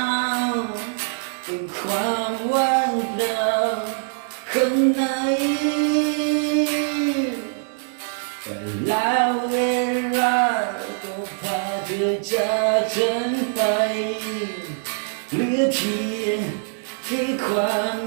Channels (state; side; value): silent; left; digital silence